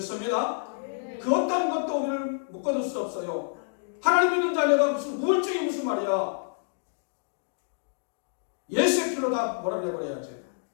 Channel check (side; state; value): right; silent; digital silence